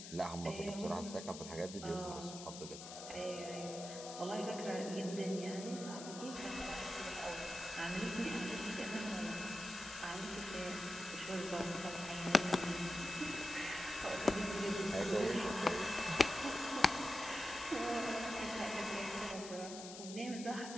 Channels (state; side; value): noise; left; hiss, 11 dB below the sound